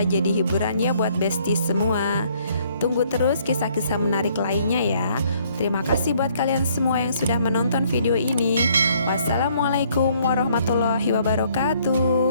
jadi hiburan ya buat Besti semua. Tunggu terus kisah-kisah menarik lainnya ya. Terima kasih buat kalian semua yang sudah menonton video ini. Wassalamualaikum warahmatullahi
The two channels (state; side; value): inverted; both; correlation -0.64